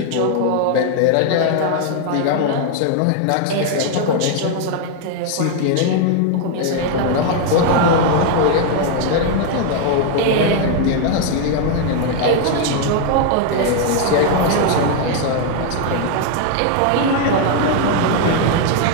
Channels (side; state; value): both; different; correlation 0.00